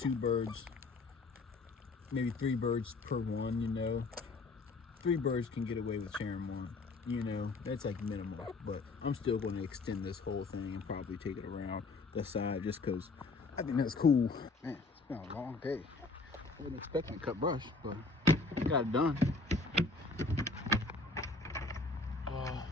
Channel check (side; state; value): right; quieter; 3.7 dB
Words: birds, maybe 3 birds per one, you know. 3 birds can get away with sharing one, you know. That's like minimal, but I'm still going to extend this whole thing and probably take it around the side just because I think that's cool. Man, it's been a long day. I wasn't expecting to cut brush, but got it done.